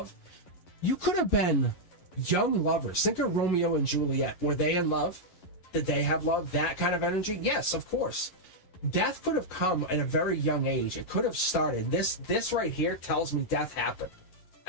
you could have been young lovers. Think of Romeo and Juliet. Were they in love? Did they have love? That kind of energy? Yes, of course. Death could have come at a very young age. It could have started. This right here tells me death happened.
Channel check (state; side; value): late; right; 11 ms